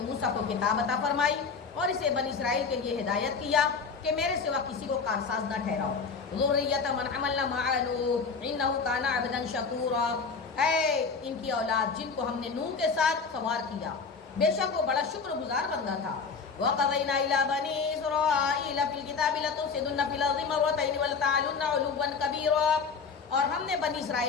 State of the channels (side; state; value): right; quieter; 5.1 dB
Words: موسیٰ کو کتاب عطا فرمائی اور اسے بنی اسرائیل کے لیے ہدایت کیا کہ میرے سوا کسی کو کارساز نہ ٹھہراؤ۔ ذُرِّيَّةَ مَنْ حَمَلْنَا مَعَ نُوحٍ إِنَّهُ كَانَ عَبْدًا شَكُورًا۔ اے ان کی اولاد جن کو ہم نے نوح کے ساتھ سوار کیا، بے شک وہ بڑا شکر گزار بندہ تھا۔ وَقَضَيْنَا إِلَىٰ بَنِي إِسْرَائِيلَ فِي الْكِتَابِ لَتُفْسِدُنَّ فِي الْأَرْضِ مَرَّتَيْنِ وَلَتَعْلُنَّ عُلُوًّا كَبِيرًا۔ اور ہم نے بنی